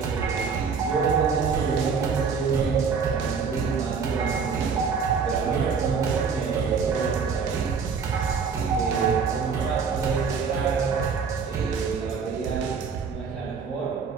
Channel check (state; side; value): quieter; left; 5.7 dB